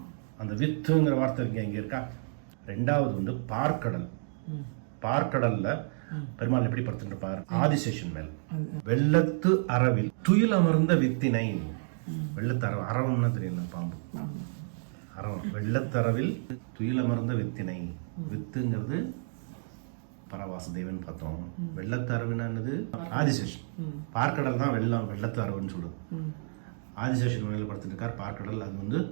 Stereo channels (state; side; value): silent; left; digital silence